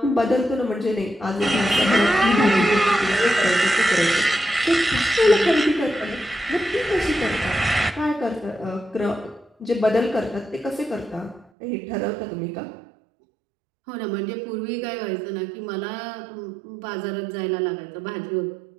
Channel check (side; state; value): left; drops out; at 11.5 s